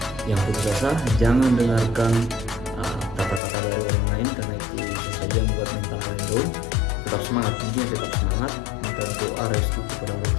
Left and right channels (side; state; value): right; drops out; at 3.4 s